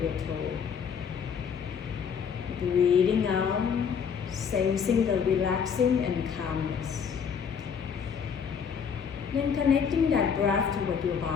your toe. Breathing out, sensing the relaxing and calmness. Then connecting that breath toward your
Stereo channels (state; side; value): quieter; right; 6.9 dB